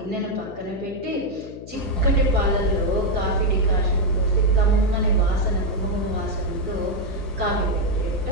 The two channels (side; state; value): left; noise; hum, 15 dB below the sound